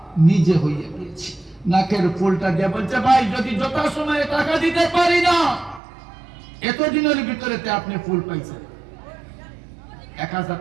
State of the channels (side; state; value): left; drops out; at 5.8 s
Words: নিজে হইয়া গিয়েছে। নাকের ফুলটা দিয়ে বলছে, ভাই যদি যথাসময়ে টাকা দিতে পারি না, এতদিনের ভিতরে আপনি ফুল পাইছেন, 1000